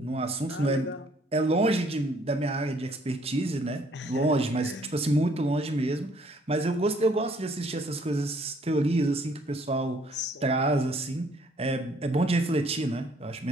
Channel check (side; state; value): both; normal; correlation 0.63